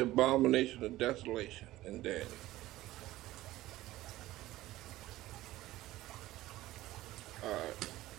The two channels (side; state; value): left; quieter; 16.4 dB